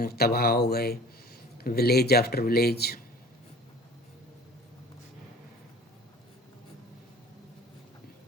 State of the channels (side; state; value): both; normal; correlation 0.44